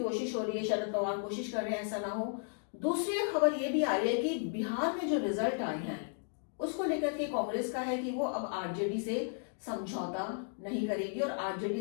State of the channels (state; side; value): silent; right; 55 dB below the other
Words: हो रही है। शरद पवार कोशिश कर रहे हैं ऐसा ना हो। दूसरी खबर ये भी आ रही है कि बिहार में जो रिजल्ट आए हैं उसको लेकर के कांग्रेस का है कि वो अब आरजेडी से समझौता नहीं करेगी और